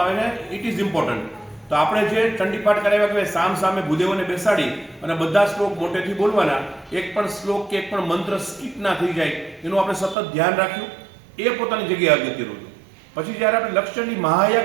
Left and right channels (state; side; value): drops out; left; at 10.2 s